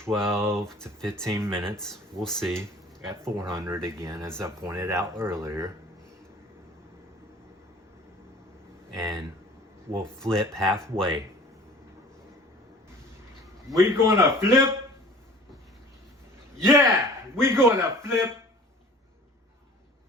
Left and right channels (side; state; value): both; normal; correlation 0.46